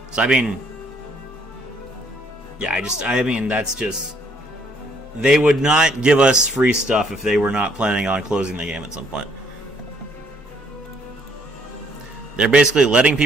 So, I mean... Yeah, I mean, that's just... They would not give us free stuff if they were not planning on closing the game at some point. They're basically letting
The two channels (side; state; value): both; normal; correlation 0.66